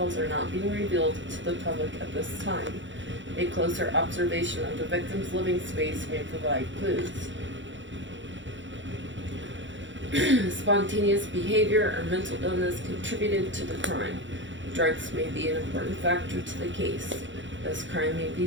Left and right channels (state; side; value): late; left; 0.54 ms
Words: are not being revealed to the public at this time. A closer observation of the victim's living space may provide clues. Spontaneous behavior or mental illness contributed to the crime. Drugs may be an important factor to the case. This crime may